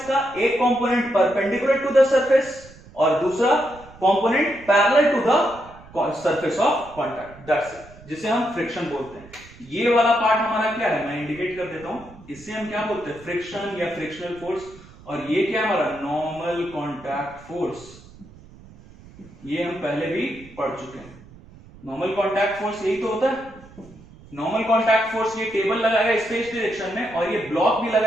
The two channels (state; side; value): noise; right; rumble, 21 dB below the sound